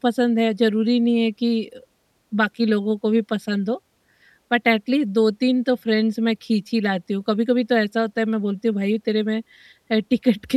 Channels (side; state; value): both; identical; correlation 1.00